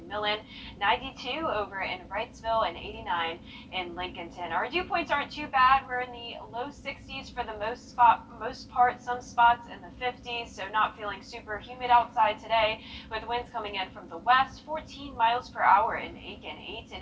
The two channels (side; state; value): both; identical; correlation 1.00